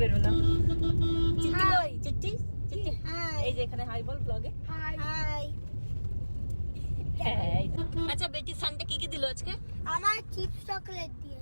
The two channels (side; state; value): both; inverted; correlation -1.00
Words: বেরোলাম। চিঠি কই? চিঠি চিঠি এই যে এখানে হাই বল ব্লগে। High high. আচ্ছা বেটি সানডে কি কি দিল আজকে? আমার চিপস চকলেট